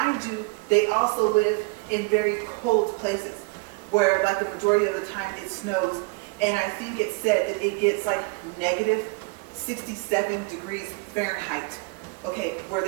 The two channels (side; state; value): left; quieter; 28.3 dB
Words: you, they also live in very cold places where like the majority of the time it snows. And I think it said that it gets like negative 67 degrees Fahrenheit, okay, where